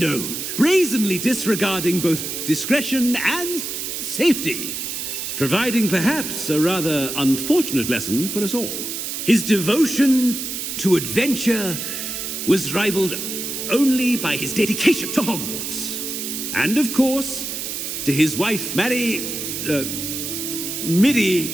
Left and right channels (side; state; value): right; noise; hiss, 5 dB below the sound